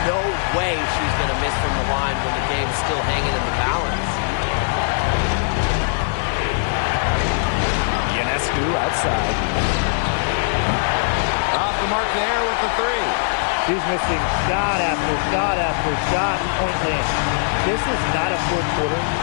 No way she's going to miss from the line when the game's still hanging in the balance. Ionescu outside. Off the mark there with the 3. She's missing shot after shot after shot. Point land. This is not a fourth quarter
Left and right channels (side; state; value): right; silent; digital silence